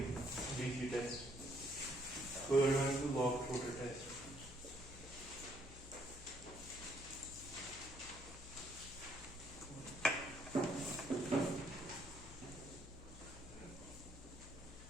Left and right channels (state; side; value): noise; left; hum, 15 dB below the sound